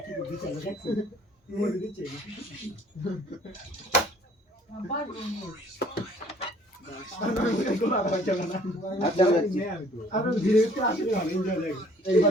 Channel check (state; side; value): normal; both; correlation 0.56